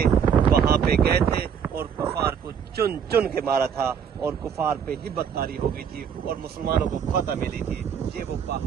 وہاں پہ گئے تھے اور کفار کو چن چن کے مارا تھا، اور کفار پہ ہبت طاری ہو گئی تھی اور مسلمانوں کو فتح ملی تھی۔ یہ وہ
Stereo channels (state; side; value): quieter; left; 7.6 dB